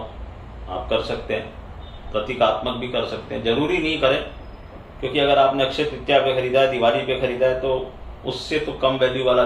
आप कर सकते हैं। प्रतीकात्मक भी कर सकते हैं, जरूरी नहीं करें, क्योंकि अगर आपने अक्षय तृतीया पे खरीदा है, दिवाली पे खरीदा है, तो उससे तो कम वैल्यू वाला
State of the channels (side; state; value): both; identical; correlation 1.00